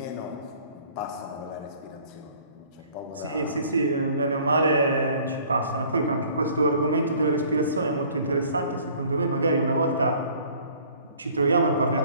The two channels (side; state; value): both; inverted; correlation -0.54